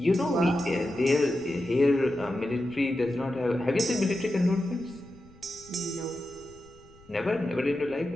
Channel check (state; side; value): noise; left; rumble, 25 dB below the sound